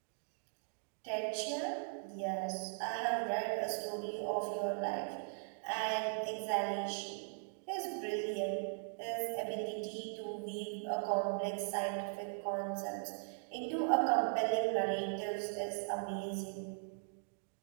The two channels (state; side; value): silent; left; digital silence